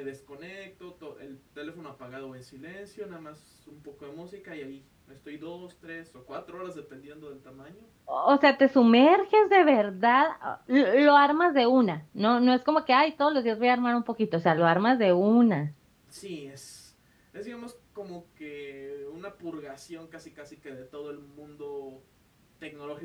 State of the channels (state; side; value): identical; both; correlation 1.00